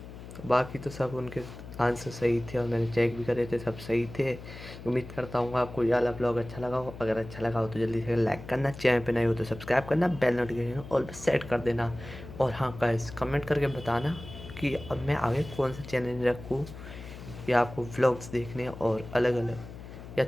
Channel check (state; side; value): noise; left; hum, 14 dB below the sound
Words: बाकी तो सब उनके आंसर सही थे और मैंने चेक भी करे थे, सब सही थे। उम्मीद करता हूँ आपको ये वाला ब्लॉग अच्छा लगा हो। अगर अच्छा लगा हो तो जल्दी से लाइक करना, चैनल पे नए हो तो सब्सक्राइब करना, बेल नोटिफिकेशन ऑल पे सेट कर देना। और हाँ गाइस, कमेंट करके बताना कि अब मैं आगे कौन सा चैलेंज रखूँ, या आपको व्लॉग्स देखने और अलग अलग या